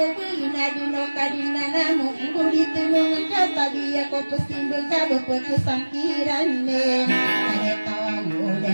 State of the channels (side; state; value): both; inverted; correlation -1.00